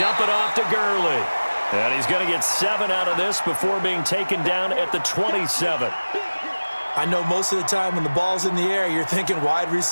it off to Gurley. And he's going to get 7 out of this before being taken down at the 27. I know most of the time when the ball's in the air, you're thinking wide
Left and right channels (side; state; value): both; inverted; correlation -1.00